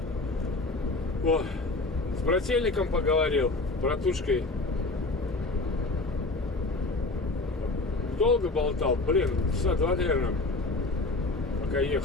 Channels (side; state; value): right; quieter; 3.2 dB